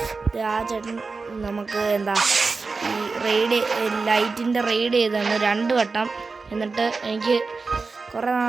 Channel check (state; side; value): quieter; left; 4.2 dB